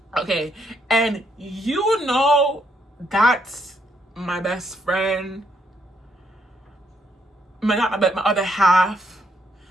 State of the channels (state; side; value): normal; both; correlation 0.74